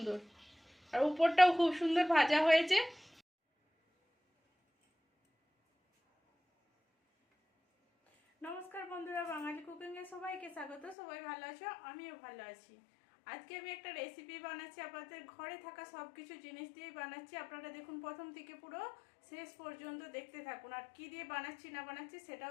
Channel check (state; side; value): drops out; right; at 11.0 s